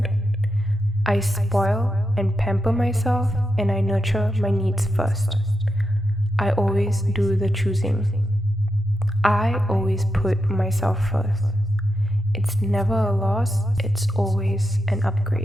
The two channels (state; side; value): normal; both; correlation 0.86